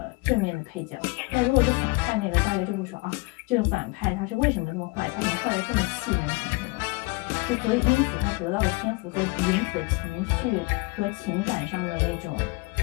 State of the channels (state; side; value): quieter; right; 26.6 dB